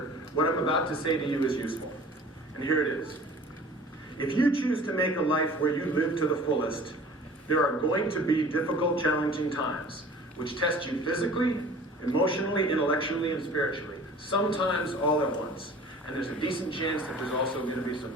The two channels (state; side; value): normal; both; correlation 0.45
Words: what I'm about to say to you is useful. And here it is. If you choose to make a life where you live to the fullest, there are going to be difficult, challenging times, which test you physically, emotionally, intellectually, and spiritually. Sometimes all at once. And there's a decent chance that there's also going to be some